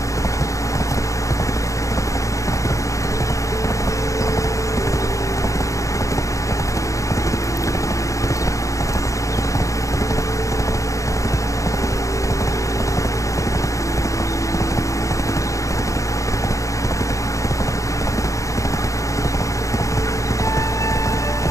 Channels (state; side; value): late; right; 0.15 ms